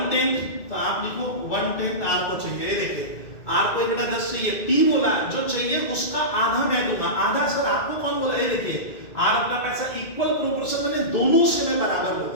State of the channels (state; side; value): late; right; 2.2 ms